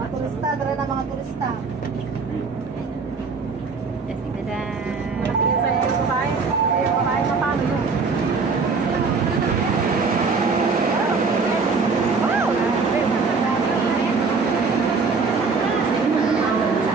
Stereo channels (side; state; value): left; quieter; 4.6 dB